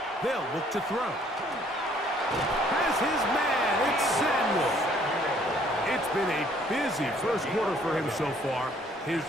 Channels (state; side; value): normal; both; correlation 0.61